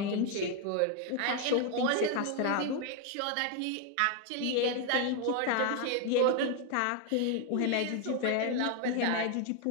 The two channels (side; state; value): both; different; correlation 0.01